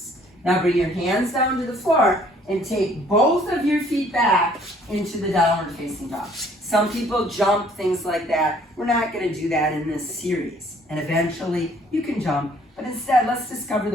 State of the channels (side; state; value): both; normal; correlation 0.59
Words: Now bring your hands down to the floor and take both of your feet back into the downward facing dog. Some people jump, things like that. We're not going to do that in this series. And eventually you can jump, but instead let's discover